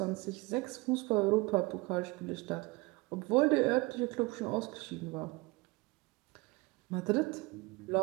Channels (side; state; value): left; quieter; 24.4 dB